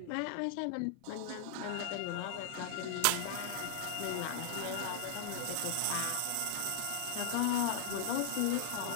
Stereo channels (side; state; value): both; different; correlation -0.01